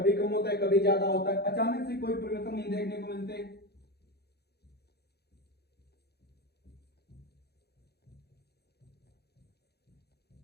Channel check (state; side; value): late; right; 0.47 ms